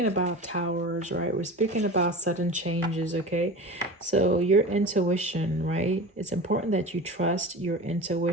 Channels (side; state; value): both; normal; correlation 0.32